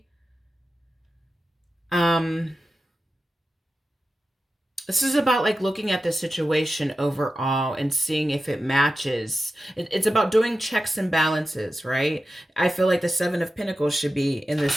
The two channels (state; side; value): normal; both; correlation 0.92